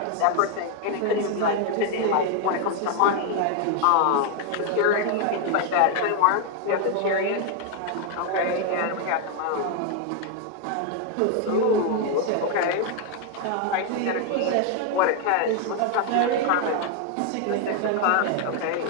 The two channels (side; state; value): both; different; correlation 0.01